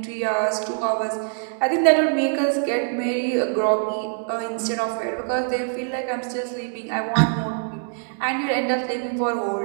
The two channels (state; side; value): silent; left; digital silence